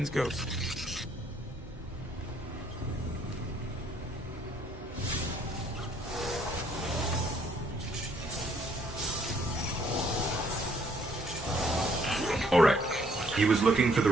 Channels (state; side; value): normal; both; correlation 0.65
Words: ghost. Alright. He was looking for the